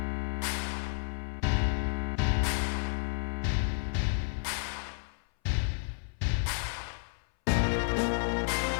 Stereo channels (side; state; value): right; silent; 57 dB below the other